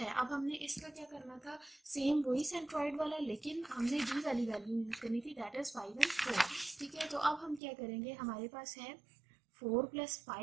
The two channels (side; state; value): left; drops out; at 7.6 s